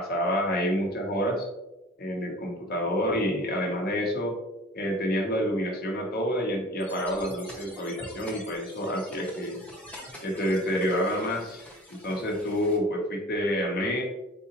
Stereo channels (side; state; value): both; normal; correlation 0.43